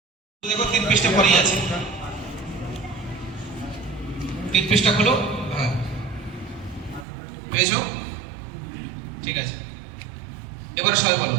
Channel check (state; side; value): drops out; left; at 7.1 s